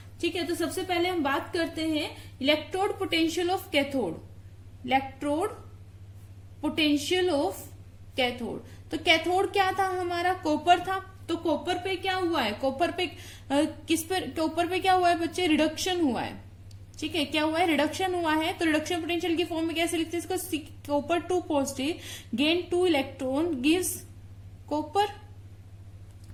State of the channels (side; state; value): both; identical; correlation 1.00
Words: ठीक है। तो सबसे पहले हम बात करते हैं electrode potential of cathode. Electrode potential of cathode, तो कैथोड क्या था हमारा, कॉपर था। तो कॉपर पे क्या हुआ है, कॉपर पे कॉपर पे क्या हुआ है बच्चे, रिडक्शन हुआ है, ठीक है। क्या हुआ है, रिडक्शन हुआ है। तो रिडक्शन पोटेंशियल की फॉर्म में कैसे लिखते हैं इसको, copper 2 positive gain 2 electron gives copper,